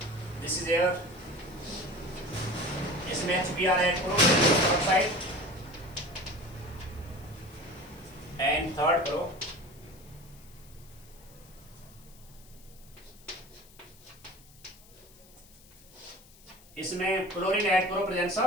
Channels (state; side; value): noise; left; hiss, 24 dB below the sound